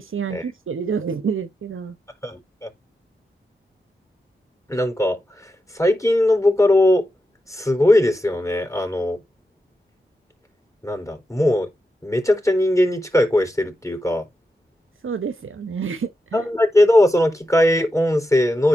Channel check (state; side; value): normal; both; correlation 0.88